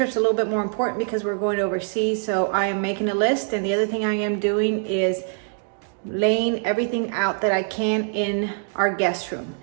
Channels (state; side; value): silent; left; 63 dB below the other